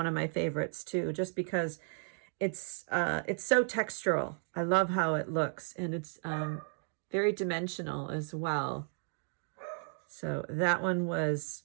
of my favorites too, just because it's so textural. I love how it looks, and it's very dimensional as well. So that one was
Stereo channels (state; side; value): silent; left; 55 dB below the other